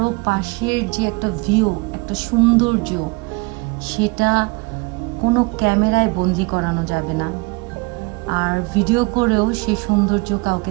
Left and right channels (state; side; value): quieter; left; 27.5 dB